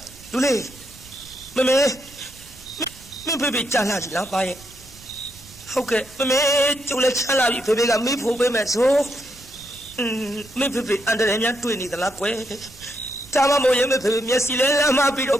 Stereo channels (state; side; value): noise; right; rumble, 22 dB below the sound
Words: လူလေးမမေမင်းဖေဖေကြာလာပြီလားပါရဲ့ဟုတ်ကဲ့မမေကျုပ်လည်းချမ်းလာပြီဖေဖေကမိဖို့ပေးမယ်ဆိုမင်းဖေဖေအန်တရယ်များတွေ့နေသလားကွယ် ဒါမှမဟုတ်ရင်မဖေမျက်စိလဲလမ်းမပြီးတော့